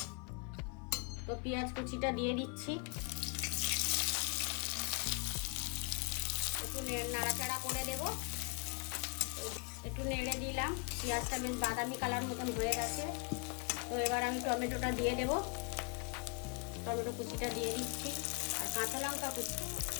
তো পেঁয়াজ কুচিটা দিয়ে দিচ্ছি। একটু নাড়াচাড়া করে দেব। একটু নেড়ে দিলাম, পেঁয়াজটা বেশ বাদামি কালার মতন হয়ে গেছে। তো এবার আমি টমেটোটা দিয়ে দেব। টমেটো কুচিটা দিয়ে দিচ্ছি আর কাঁচা লঙ্কা কুচি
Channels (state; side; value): quieter; right; 33.7 dB